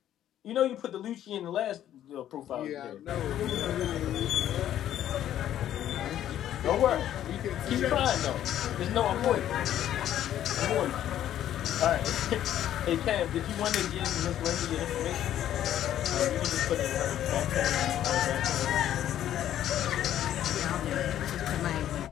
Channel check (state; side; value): quieter; right; 11.5 dB